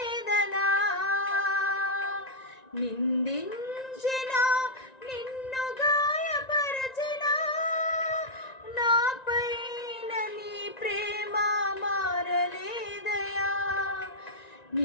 నిందించిన, నిన్ను గాయపరచిన, నాపైన నీ ప్రేమ మారలేదయా.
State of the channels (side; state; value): right; late; 1.9 ms